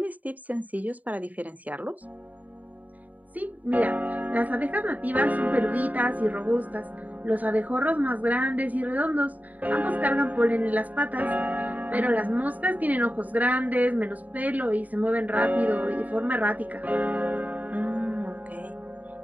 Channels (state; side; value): late; left; 0.075 ms